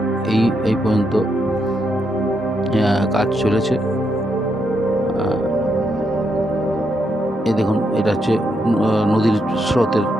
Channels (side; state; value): both; normal; correlation 0.80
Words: এই পর্যন্ত কাজ চলেছে। এই দেখুন এটা হচ্ছে নদীর স্রোতের